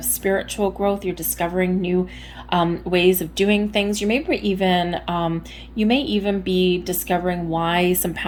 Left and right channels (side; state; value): both; identical; correlation 1.00